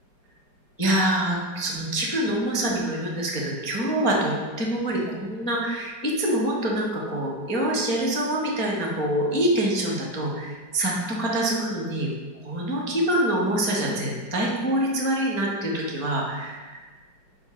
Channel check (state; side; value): late; right; 4.4 ms